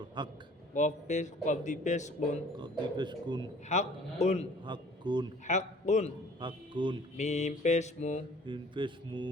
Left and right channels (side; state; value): both; normal; correlation 0.52